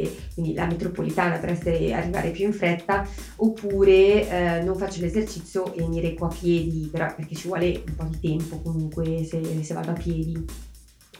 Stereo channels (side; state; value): both; identical; correlation 1.00